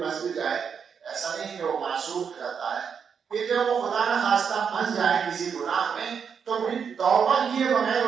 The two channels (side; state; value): left; quieter; 6.7 dB